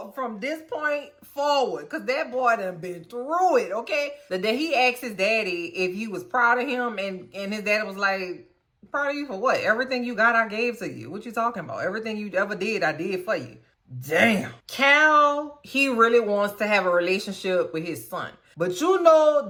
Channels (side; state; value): both; identical; correlation 1.00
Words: from this point forward, because that boy done been through it, okay? The day he asked his daddy if he was proud of him, and his daddy was like, proud of you for what? Everything you got, I gave to you. What you talking about? Everything you ever did, I did for you. Damn. Cal, he really wants to have a relationship with his son. But you know,